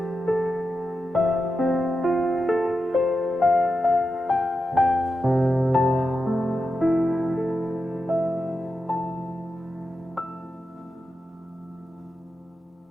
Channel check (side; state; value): both; normal; correlation 0.89